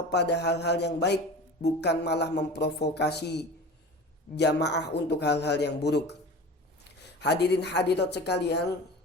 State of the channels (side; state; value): both; normal; correlation 0.35